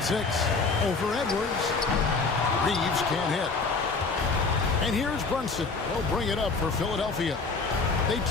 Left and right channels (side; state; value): right; quieter; 4.2 dB